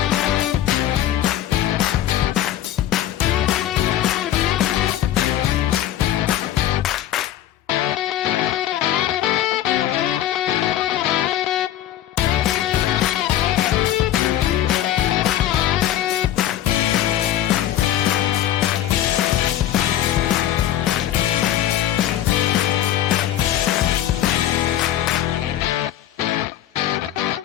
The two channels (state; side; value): quieter; right; 12.2 dB